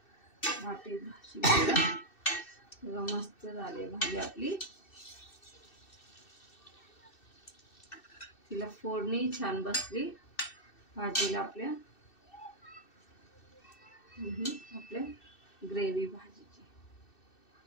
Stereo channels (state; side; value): late; right; 2.6 ms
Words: वाटी मस्त झाली भाजी आपली. तिला फोडणी छान बसली भाजीला आपल्या. आपल्या ग्रेव्ही भाजीची.